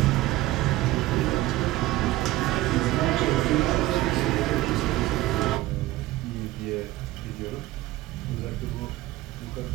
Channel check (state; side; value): quieter; left; 17.0 dB